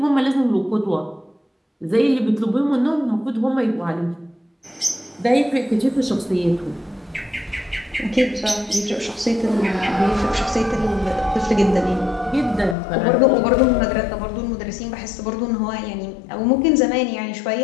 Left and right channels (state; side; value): drops out; right; at 12.8 s